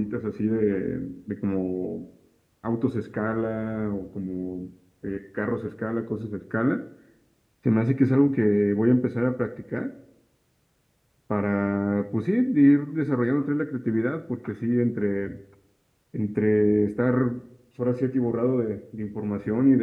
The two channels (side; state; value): both; identical; correlation 1.00